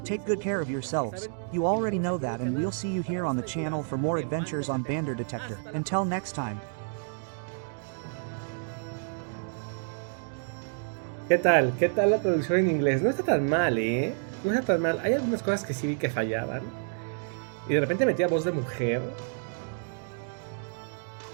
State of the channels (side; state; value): left; silent; 58 dB below the other